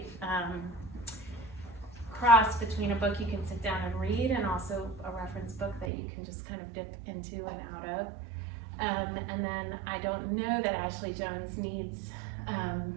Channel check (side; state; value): left; drops out; at 5.9 s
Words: cross between a book you can sit down and read and also a reference book that you can just kind of dip into and out of. And then I don't know that Ashley Jones needs